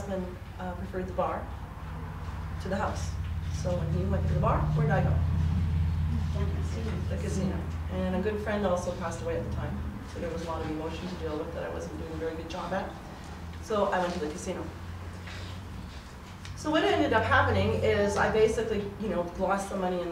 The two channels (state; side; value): identical; both; correlation 1.00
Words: preferred the bar to the house. So when he went to the bar, where did I go? The casino. And a good friend also passed away at the time. So there was a lot of emotion to deal with that I wasn't doing a very good job at. So I went to the casino. So what ended up happening is I basically, lost the money in